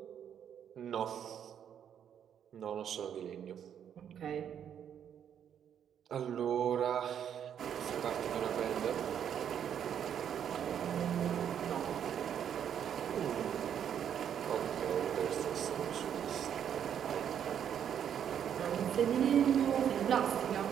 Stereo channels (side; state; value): left; quieter; 8.9 dB